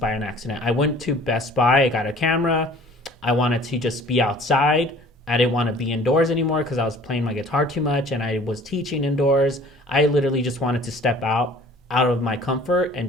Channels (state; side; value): normal; both; correlation 0.50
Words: an accident. I went to Best Buy, I got a camera. I wanted to just be outside. I didn't want to be indoors anymore because I was playing my guitar too much and I was teaching indoors. I literally just wanted to step out of my comfort and